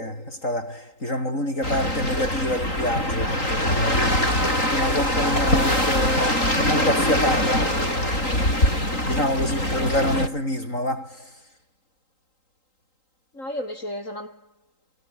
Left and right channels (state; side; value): late; right; 3.8 ms